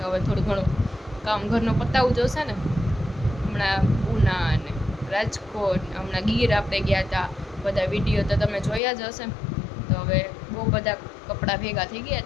હવે થોડું ઘણું કામ ઘરનું પતાવવું જોશે ને. હમણાં ઉના અને રાજકોટ, હમણાં ગીર આપણે ગયા હતા. બધા વિડીયો તો તમે જોયા જ હશે. તો હવે બહુ બધા કપડાં ભેગા થઈ ગયા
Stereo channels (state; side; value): drops out; right; at 8.8 s